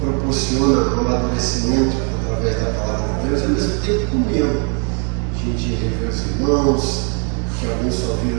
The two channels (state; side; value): quieter; left; 38.5 dB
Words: um amadurecimento através da palavra de Deus, e ao mesmo tempo comunhão. A gente rever os irmãos, que alguns só